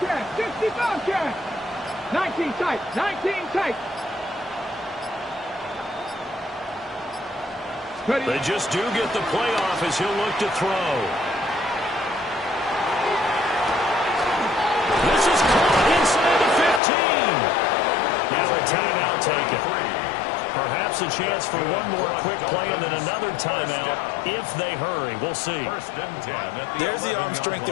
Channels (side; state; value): right; drops out; at 16.8 s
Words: 65 cat. 19 tight, 19 tight. Ready? They just do get the playoff as he'll look to throw. This is caught inside the 15. Now a timeout taken. Perhaps a chance for one more quick play and then another timeout if they hurry. We'll see. There's the arm strength